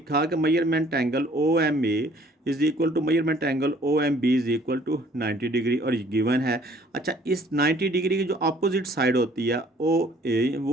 कि measurement angle O M A is equal to measurement angle O M B is equal to 90 degree, और ये गिवन है। अच्छा, इस 90 डिग्री की जो अपोजिट साइड होती है ओ ए,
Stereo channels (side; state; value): both; normal; correlation 0.58